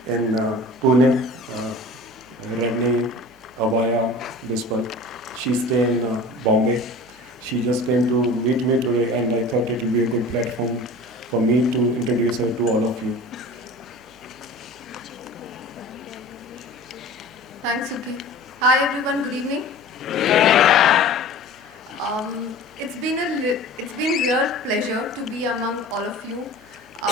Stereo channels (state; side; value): normal; both; correlation 0.39